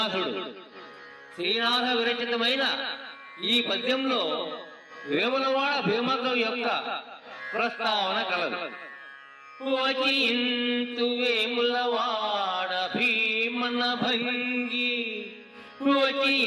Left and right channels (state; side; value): identical; both; correlation 1.00